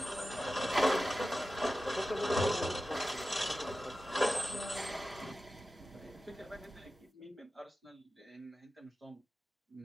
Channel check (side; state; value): both; normal; correlation 0.94